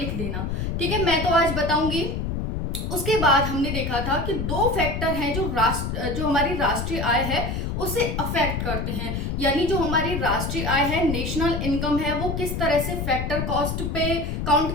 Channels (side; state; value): left; noise; rumble, 2 dB below the sound